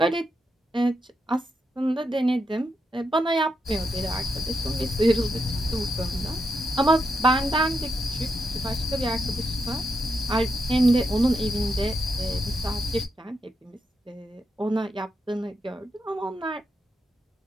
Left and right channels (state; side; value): normal; both; correlation 0.83